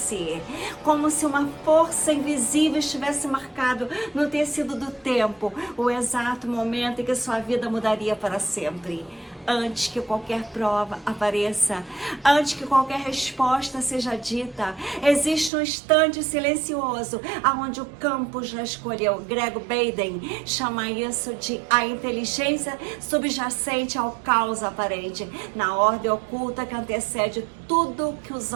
Como se uma força invisível estivesse marcado no tecido do tempo, o exato momento em que sua vida mudaria para sempre. Antes que qualquer prova apareça, antes que qualquer resposta seja dita, existe um instante silencioso, aonde o campo já escolheu. Greg Baden chama isso de a inteligência subjacente ao caos aparente, na ordem oculta que antecede tudo que os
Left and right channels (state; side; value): drops out; left; at 15.5 s